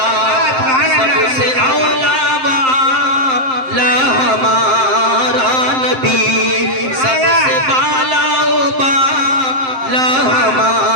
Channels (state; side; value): late; left; 7.7 ms